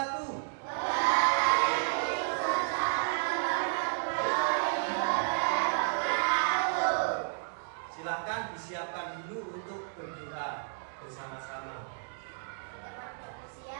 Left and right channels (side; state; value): left; silent; digital silence